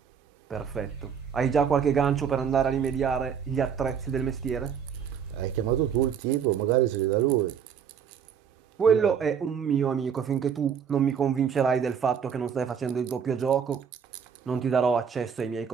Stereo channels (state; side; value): quieter; left; 7.4 dB